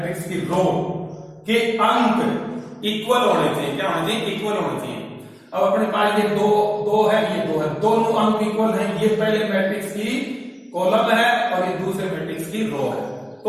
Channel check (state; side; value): identical; both; correlation 1.00